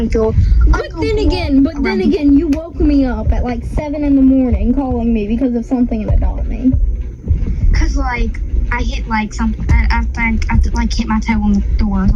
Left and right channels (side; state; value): both; identical; correlation 1.00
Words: But then again, you woke me up at like 7 a.m. calling me because of something about me. Cause like I hit like something. I think I like hit my toe on the door or